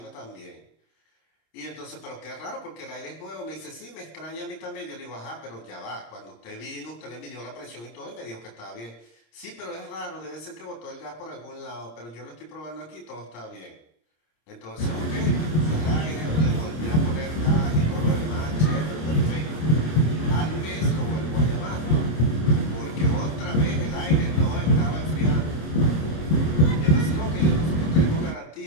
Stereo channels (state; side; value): late; right; 26 ms